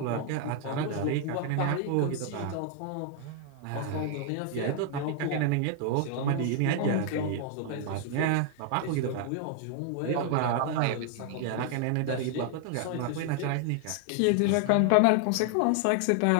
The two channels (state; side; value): different; both; correlation 0.00